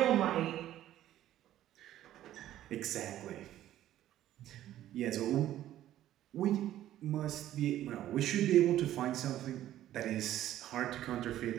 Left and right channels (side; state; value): left; quieter; 12.9 dB